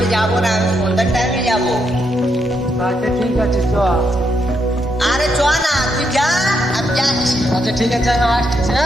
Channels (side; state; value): both; normal; correlation 0.79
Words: যাবো না, আমি সন্ধ্যার টাইমে যাবো। আচ্ছা ঠিক আছে চ। আরে চ না, তুই যা, আমি যাচ্ছি। আচ্ছা ঠিক আছে আমি আসছি।